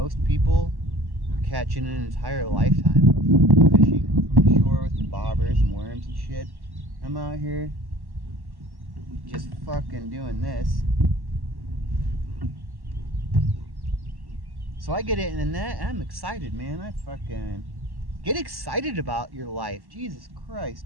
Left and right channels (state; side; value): late; left; 1.1 ms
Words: people catch in an entire lifetime of fishing from the shore with the bobbers and worms and shit. I'm out here just fucking doing this. So I get it in the net, and I'm excited, man. I fucking get excited about your life. Jesus Christ.